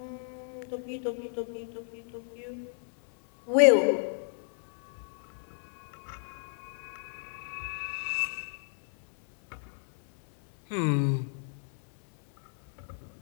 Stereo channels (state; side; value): silent; right; digital silence